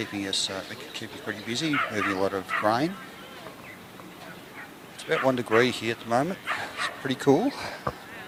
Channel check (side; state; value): both; identical; correlation 1.00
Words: us pretty busy, moving a lot of grain. It's about 1 degree here at the moment. It's pretty cool.